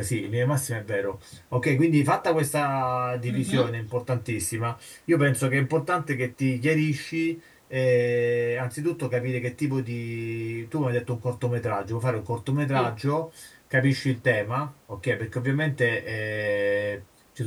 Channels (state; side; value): identical; both; correlation 1.00